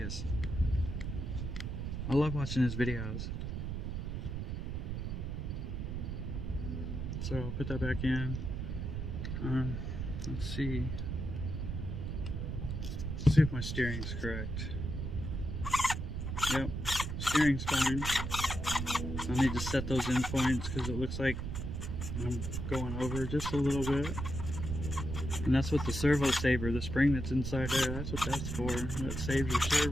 I love watching his videos. So I'll put that back in. Let's see. Let's see if my steering's correct. Yep, steering's fine. I need to set those in points because it looks like I'm going over just a little bit. And that's what the servo saver, the spring that's inside there, that's what that's for. That saves your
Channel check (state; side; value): noise; right; rumble, 3 dB below the sound